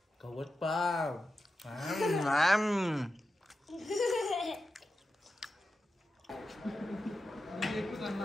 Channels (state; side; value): normal; both; correlation 0.91